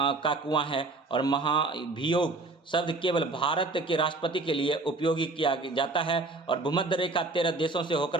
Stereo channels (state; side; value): quieter; left; 3.3 dB